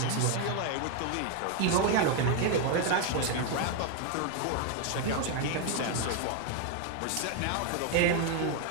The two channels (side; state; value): both; different; correlation 0.01